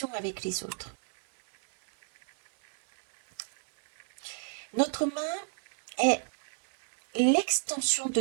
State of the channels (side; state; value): left; silent; 58 dB below the other